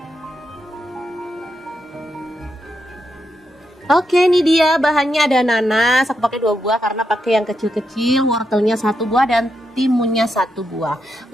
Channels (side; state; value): both; normal; correlation 0.83